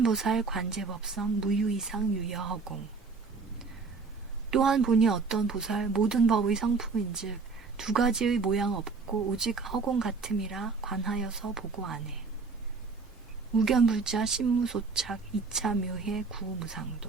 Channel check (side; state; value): left; quieter; 4.5 dB